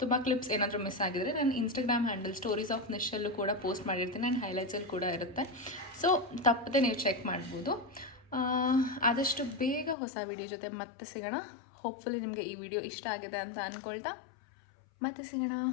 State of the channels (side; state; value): right; drops out; at 10.0 s